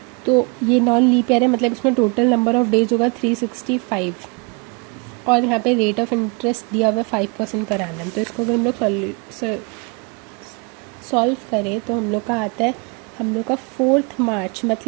तो ये नॉन लीप ईयर है, मतलब इसमें टोटल नंबर ऑफ डेज होगा 365, और यहाँ पे रेट ऑफ इंटरेस्ट दिया हुआ है 5% पर एनम। तो इसको अगर हम लोग सॉल्व करें तो हम लोग का आता है, हम लोग का 4 मार्च,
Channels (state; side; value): quieter; left; 31.7 dB